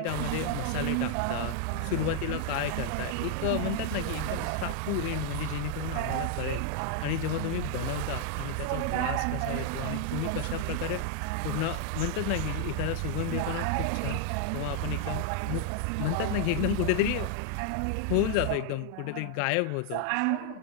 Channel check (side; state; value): both; different; correlation 0.00